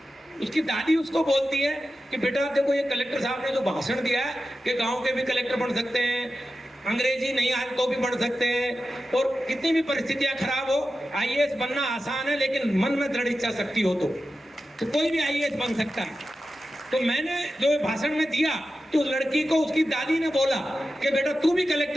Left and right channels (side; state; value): both; normal; correlation 0.92